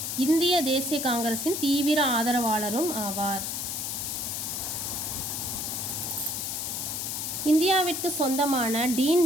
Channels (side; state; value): left; noise; hiss, 3 dB below the sound